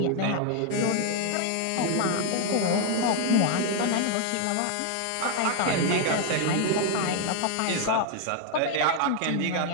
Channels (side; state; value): both; different; correlation 0.00